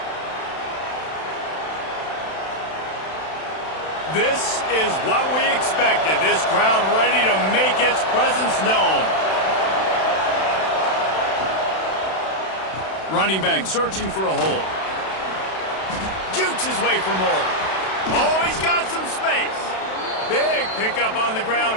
This is what we expected. This crowd ready to make its presence known. Running back searching for a hole. Jukes his way for more. Oh, he's got some space. Big pickup on the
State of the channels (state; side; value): late; right; 31 ms